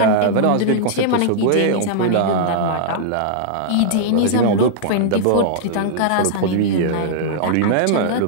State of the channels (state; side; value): different; both; correlation -0.02